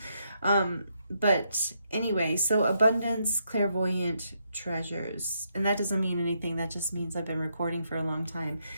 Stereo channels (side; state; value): both; inverted; correlation -0.78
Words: But anyway, so abundance, clairvoyant treasures. And that doesn't mean anything. That just means I've been recording for a long time.